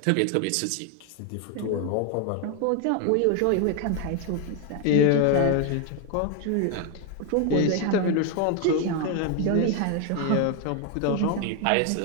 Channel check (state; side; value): different; both; correlation 0.01